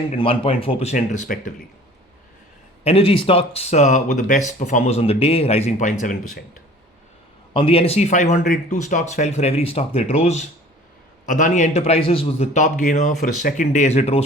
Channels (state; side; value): normal; both; correlation 0.47